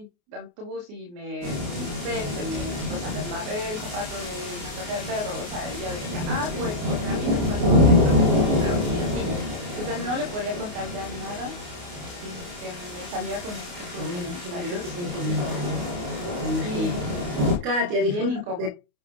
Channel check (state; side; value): late; left; 28 ms